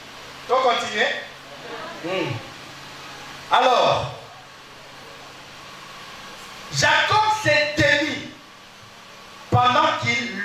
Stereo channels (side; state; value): both; identical; correlation 1.00